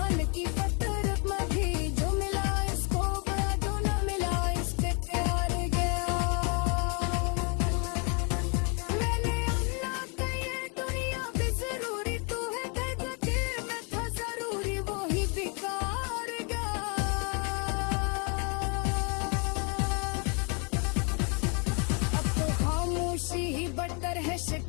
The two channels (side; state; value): right; quieter; 34.9 dB